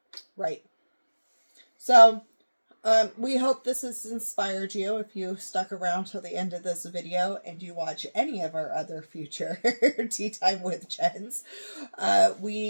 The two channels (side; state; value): both; inverted; correlation -1.00